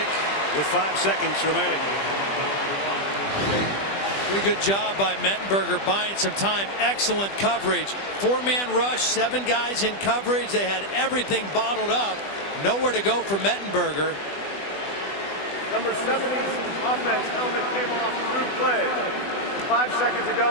with 5 seconds remaining. Pretty good job by Mettenberger buying some time. Excellent coverage. 4-man rush, 7 guys in coverage. They had everything bottled up. Nowhere to go for Mettenberger. Number 70's offense helmet came off through play. With 5 seconds to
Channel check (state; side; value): late; right; 20 ms